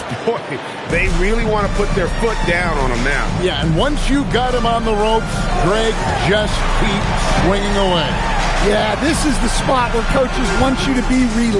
Boy, they really want to put their foot down on him now. Yeah, and once you got him on the ropes, Greg, just keep swinging away. Yeah, this is the spot where coaches want you to be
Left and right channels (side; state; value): both; identical; correlation 1.00